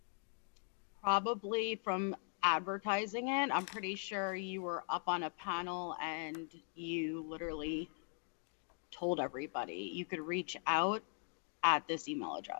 Probably from advertising it. I'm pretty sure you were up on a panel and you literally told everybody you could reach out at this email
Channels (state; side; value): silent; right; 51 dB below the other